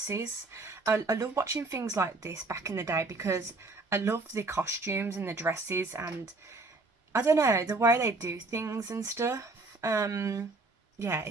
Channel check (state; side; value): quieter; left; 3.4 dB